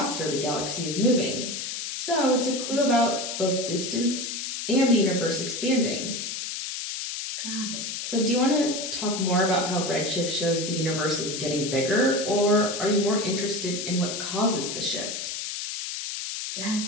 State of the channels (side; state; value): left; noise; hiss, 5 dB below the sound